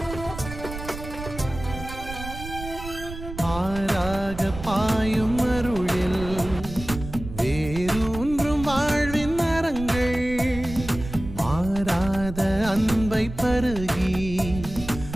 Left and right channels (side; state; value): right; noise; rumble, 10 dB below the sound